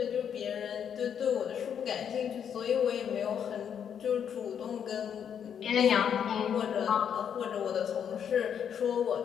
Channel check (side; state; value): right; quieter; 8.3 dB